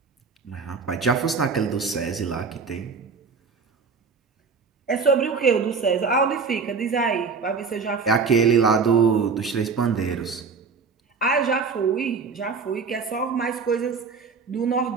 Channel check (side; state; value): left; quieter; 5.1 dB